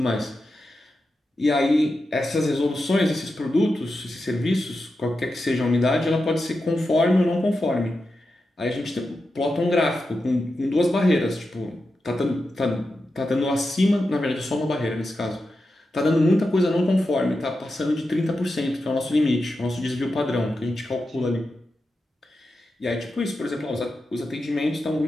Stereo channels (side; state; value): both; normal; correlation 0.89